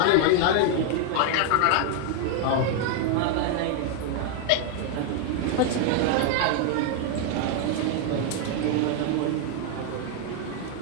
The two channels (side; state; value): both; different; correlation 0.00